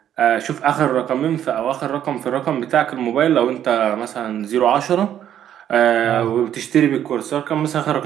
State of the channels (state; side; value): quieter; left; 10.4 dB